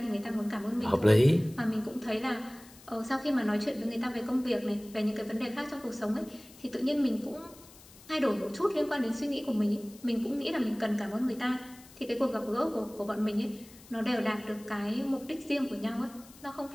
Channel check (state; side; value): noise; left; hiss, 22 dB below the sound